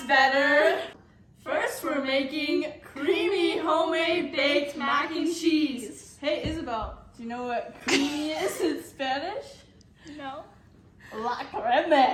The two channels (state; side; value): identical; both; correlation 1.00